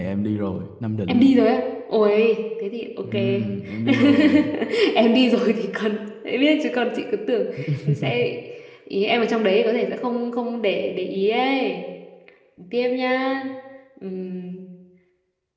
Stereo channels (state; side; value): identical; both; correlation 1.00